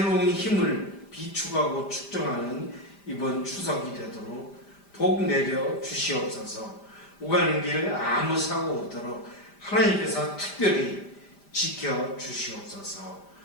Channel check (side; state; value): right; late; 5.0 ms